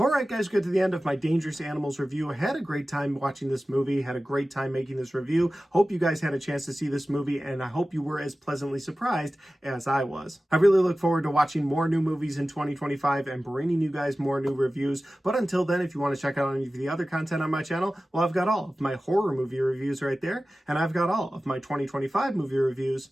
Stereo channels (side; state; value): both; normal; correlation 0.96